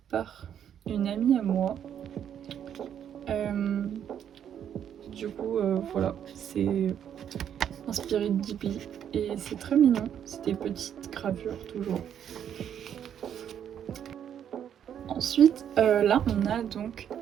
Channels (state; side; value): quieter; left; 9.3 dB